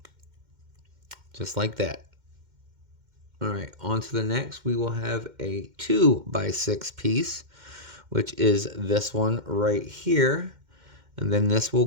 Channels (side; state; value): left; late; 2.1 ms